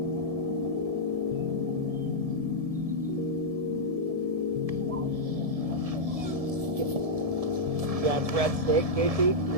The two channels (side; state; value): left; late; 1.7 ms